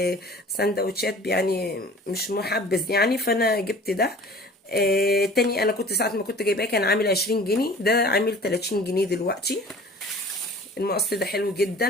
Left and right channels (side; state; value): both; normal; correlation 0.46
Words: يعني مش محبذ يعني، فانا جبت ده. تاني انا كنت ساعه ما كنت جايباه كان عامل 20 جنيه، ده عامل 30 جنيه دلوقتي. المقص ده حلو